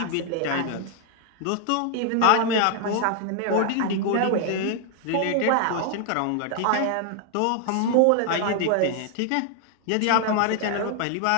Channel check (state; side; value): different; both; correlation 0.00